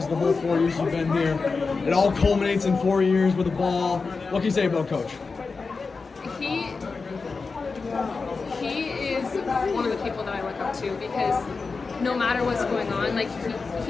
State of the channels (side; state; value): right; quieter; 4.4 dB